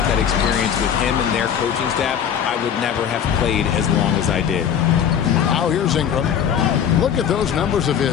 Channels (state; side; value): quieter; right; 8.5 dB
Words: that experience with him and their coaching staff, I would never have played as long as I did. Now here's Ingram. Look at those numbers of